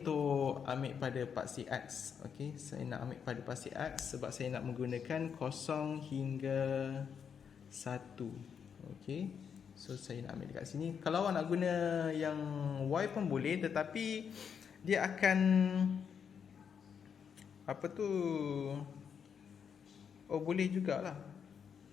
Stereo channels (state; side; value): quieter; right; 7.2 dB